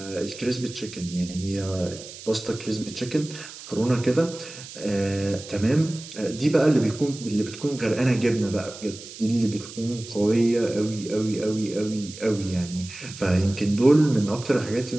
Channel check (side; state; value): right; noise; hiss, 14 dB below the sound